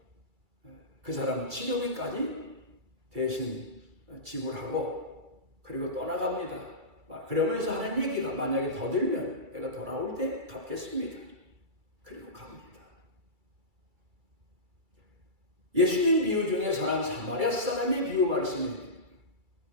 그 사람 치료비까지 대신 지불하고 그리고 떠나갑니다. 그러면서 하는 얘기가 만약에 더 들면 내가 돌아올 때 갚겠습니다. 그리고 갑니다. 예수님 비유 중에서는 사마리아 사람의 비유 말씀입니다.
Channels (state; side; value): late; left; 2.3 ms